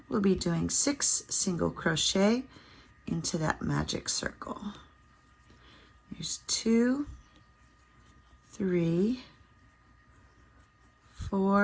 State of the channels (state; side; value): identical; both; correlation 1.00